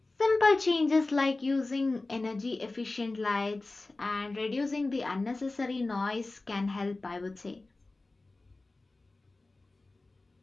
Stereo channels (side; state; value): right; quieter; 3.2 dB